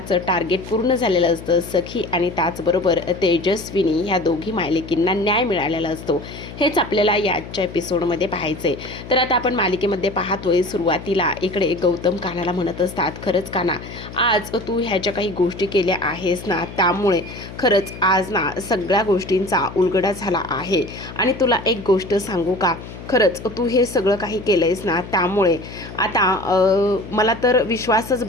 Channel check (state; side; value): noise; left; hum, 13 dB below the sound